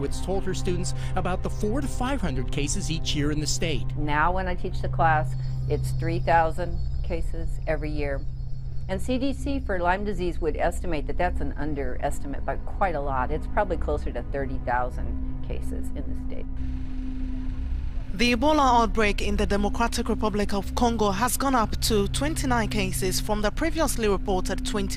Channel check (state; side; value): identical; both; correlation 1.00